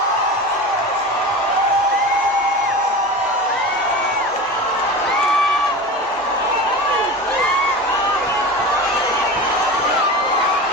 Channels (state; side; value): normal; both; correlation 0.30